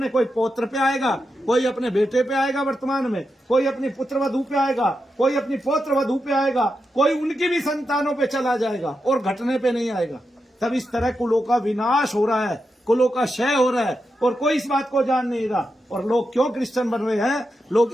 कोई पौत्र पे आएगा, कोई अपने बेटे पे आएगा वर्तमान में, कोई अपनी पुत्र वधू पे आएगा, कोई अपनी पौत्र वधू पे आएगा, कोई उनकी भी संतानों पे चला जाएगा और घटने पे नहीं आएगा। तब इस तरह कुलों का विनाश हो रहा है, कुलों का क्षय हो रहा है और कोई इस बात को जान नहीं रहा। और लोग क्यों क्रिश्चियन बन रहे हैं? लोग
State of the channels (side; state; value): both; normal; correlation 0.87